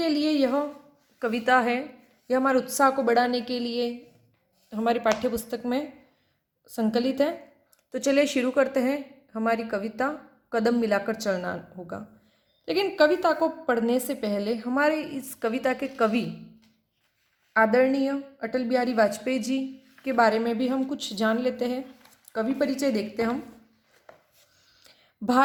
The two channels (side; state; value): both; identical; correlation 1.00